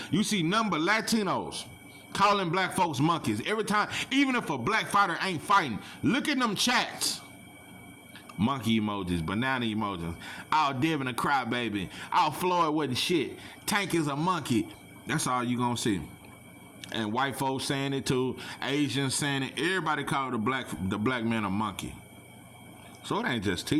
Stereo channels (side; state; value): both; identical; correlation 1.00